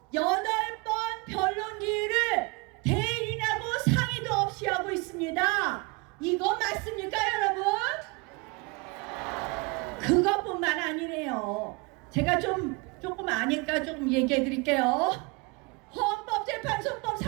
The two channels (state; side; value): quieter; left; 27.7 dB